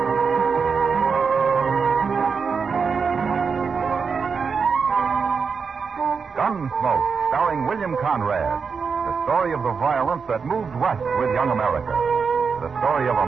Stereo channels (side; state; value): left; quieter; 5.5 dB